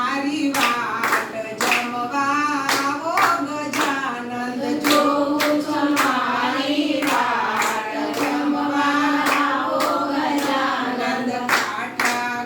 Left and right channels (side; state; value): both; identical; correlation 1.00